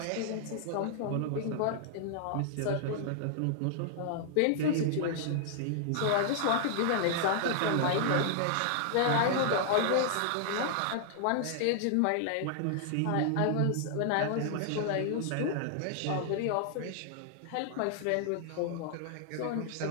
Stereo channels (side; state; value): both; different; correlation -0.01